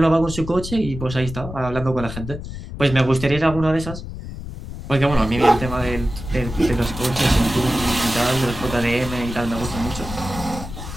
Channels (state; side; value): noise; left; rumble, 9 dB below the sound